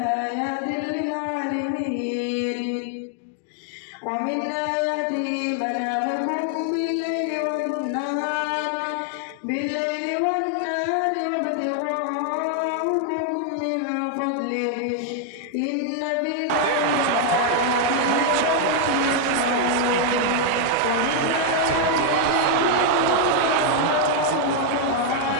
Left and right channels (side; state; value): both; different; correlation 0.00